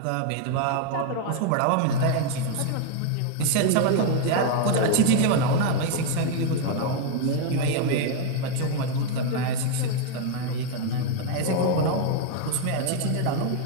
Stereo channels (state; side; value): different; both; correlation 0.01